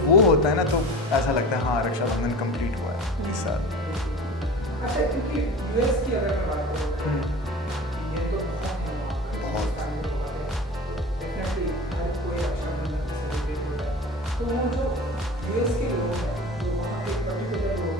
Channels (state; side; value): normal; both; correlation 0.35